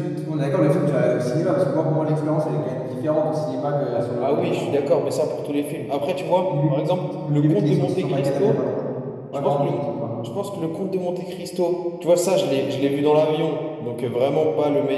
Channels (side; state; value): both; identical; correlation 1.00